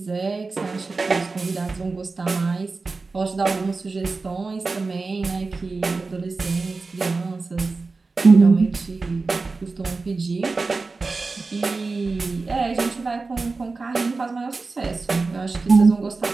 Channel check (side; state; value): left; quieter; 3.9 dB